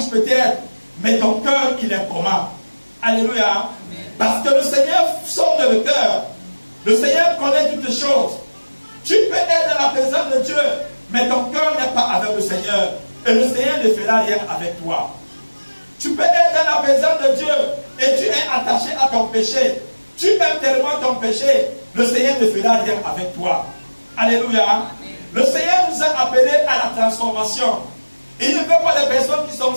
peut-être, mais ton cœur, il est comment? Alléluia. Amen. Parce que le Seigneur sonde le cœur. Le Seigneur connaît toutes les choses. Tu peux être dans la présence de Dieu, mais ton cœur n'est pas avec le Seigneur. Et le Seigneur ne fera rien avec toi. Tu peux être dans la présence de Dieu et tu es attaché à ton péché. Tu aimes tellement ton péché, le Seigneur ne fera rien avec toi. Alléluia. Amen. Le Seigneur nous a appelés à la transformation. Il ne veut pas des personnes qui sont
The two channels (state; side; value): inverted; both; correlation -1.00